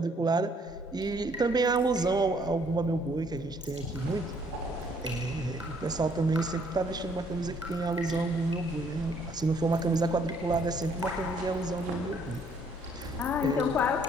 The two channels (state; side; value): normal; both; correlation 0.64